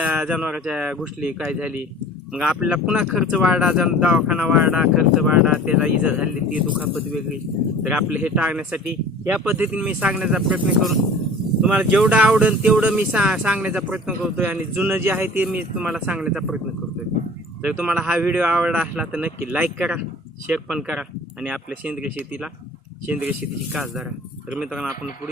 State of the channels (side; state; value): both; normal; correlation 0.44